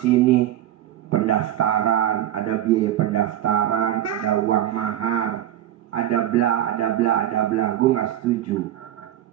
pendaftaran, ada biaya pendaftaran, ada uang mahar, ada bla, ada bla, ada bla. Gue nggak setuju.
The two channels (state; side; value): quieter; left; 12.2 dB